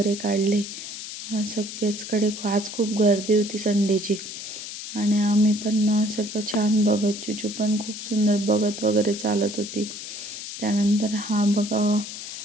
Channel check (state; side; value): noise; left; hiss, 9 dB below the sound